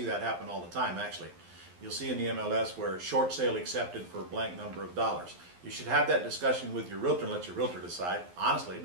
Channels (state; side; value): late; left; 11 ms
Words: that happen all the time, actually. You'll see in the MLS where short sale accepted for a blank number of dollars. You should have that discussion with your realtor and let your realtor decide. Honestly, it